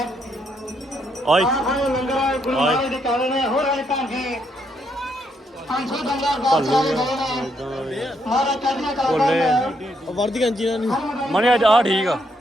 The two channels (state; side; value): normal; both; correlation 0.75